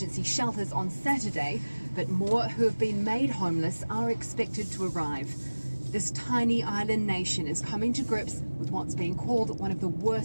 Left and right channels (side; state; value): both; inverted; correlation -1.00